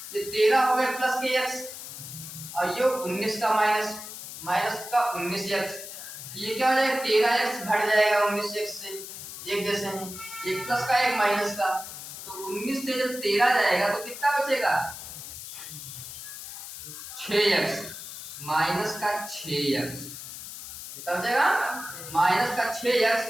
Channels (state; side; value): noise; left; hiss, 11 dB below the sound